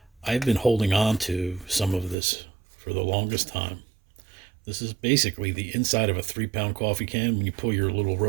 I've been holding on to some of this for the longest time. This is basically the inside of a 3-pound coffee can when you pull your little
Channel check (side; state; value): left; drops out; at 2.1 s